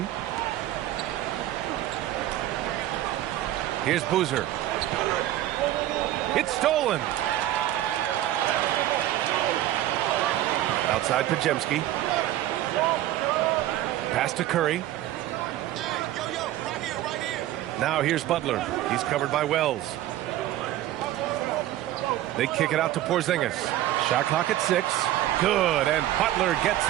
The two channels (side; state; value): left; quieter; 13.9 dB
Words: Here's Boozer. It's stolen. Outside Podziemski. Pass to Curry. Now here's Butler. He's covered by Wells. They kick it out to Porzingis. Shot clock at 6. Good, and Butler gets